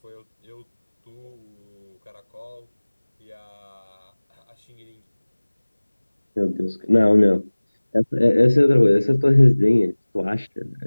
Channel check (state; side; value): inverted; both; correlation -1.00